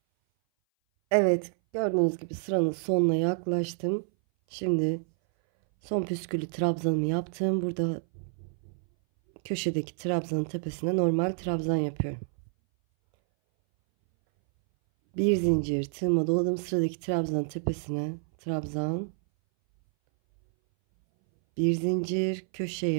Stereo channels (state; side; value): silent; left; 59 dB below the other